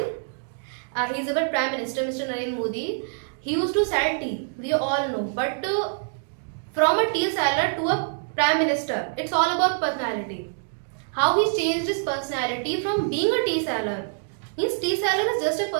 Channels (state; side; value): silent; left; digital silence